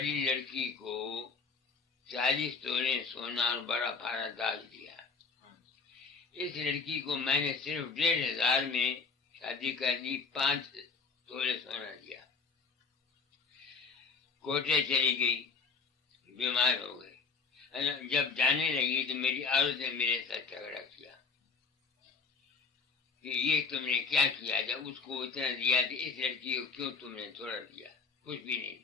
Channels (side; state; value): right; quieter; 4.9 dB